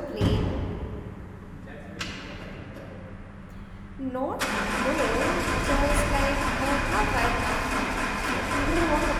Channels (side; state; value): both; identical; correlation 1.00